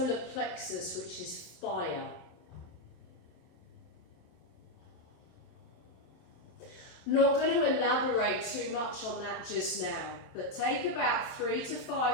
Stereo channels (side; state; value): right; late; 28 ms